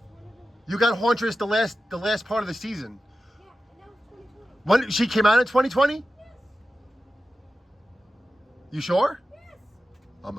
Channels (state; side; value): normal; both; correlation 0.93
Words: You got Hauntress the last part of the season. Yeah, and that was 2020. When she came out in 2020? Yes. You sure? Yes. I'm